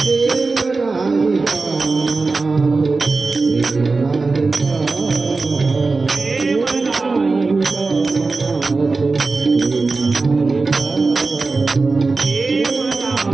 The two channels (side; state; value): left; quieter; 3.9 dB